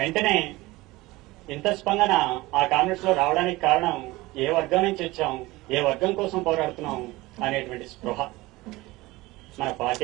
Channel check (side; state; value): left; quieter; 20.1 dB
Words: ఇంత స్పందన ఆ కామ్రేడ్స్ లో రావడానికి కారణం ఏ వర్గం నుంచి వచ్చాం, ఏ వర్గం కోసం పోరాడుతున్నాం అనేటువంటి స్పృహ. మన